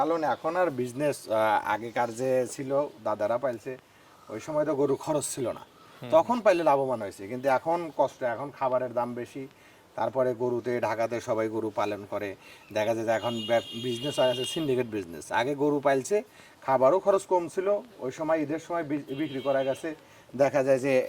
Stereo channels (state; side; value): identical; both; correlation 1.00